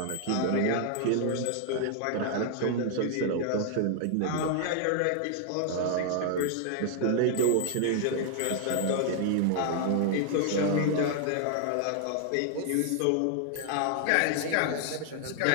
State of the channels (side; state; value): both; different; correlation 0.00